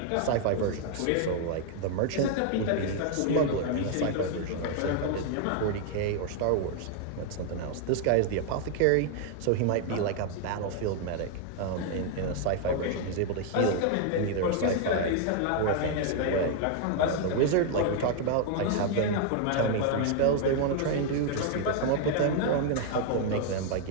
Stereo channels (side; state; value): both; different; correlation 0.00